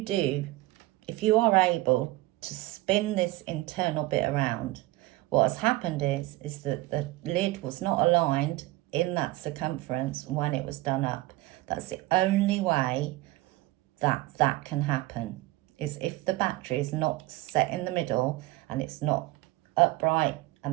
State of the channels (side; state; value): left; quieter; 18.9 dB